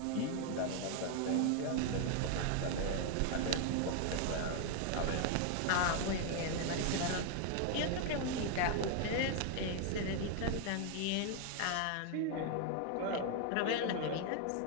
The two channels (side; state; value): both; different; correlation 0.00